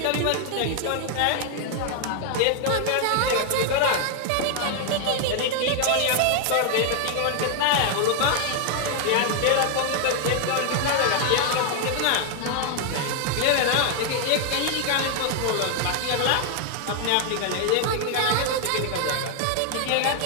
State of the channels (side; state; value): both; different; correlation 0.00